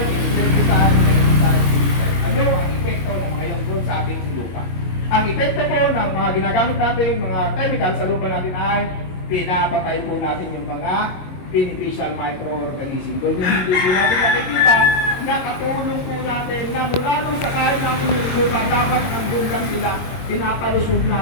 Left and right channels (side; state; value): right; late; 22 ms